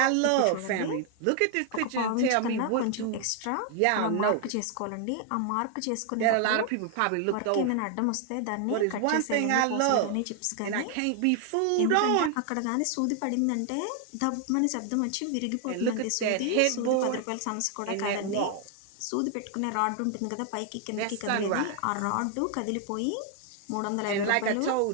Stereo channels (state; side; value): different; both; correlation 0.00